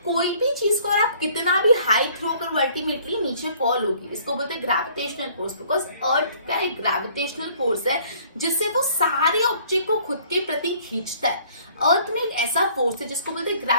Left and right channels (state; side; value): inverted; both; correlation -0.57